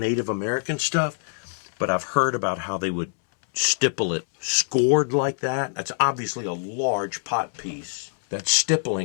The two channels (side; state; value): right; silent; 62 dB below the other